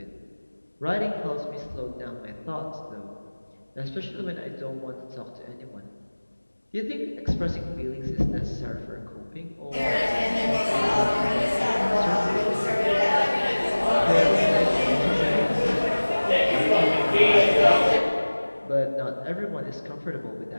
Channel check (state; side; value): inverted; both; correlation -1.00